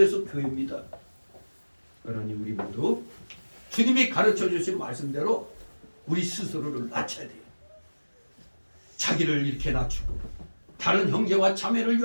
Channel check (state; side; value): inverted; both; correlation -1.00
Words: 교회입니다. 그러니 우리 모두 주님이 가르쳐 주신 말씀대로 우리 스스로를 낮춰야 돼요. 자기를 이렇게 낮추고 다른 형제와 자매를